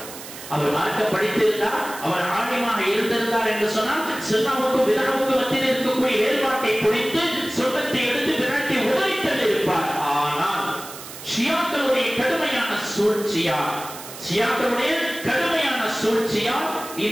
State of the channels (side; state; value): right; noise; hiss, 13 dB below the sound